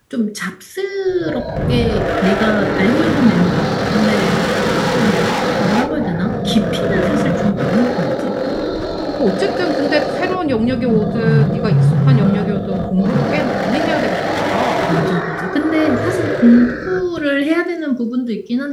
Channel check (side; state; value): both; identical; correlation 1.00